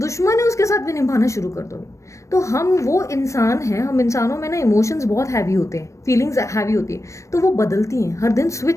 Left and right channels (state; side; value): late; right; 0.15 ms